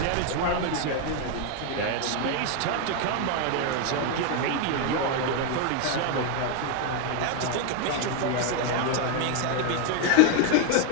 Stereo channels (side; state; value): both; different; correlation 0.01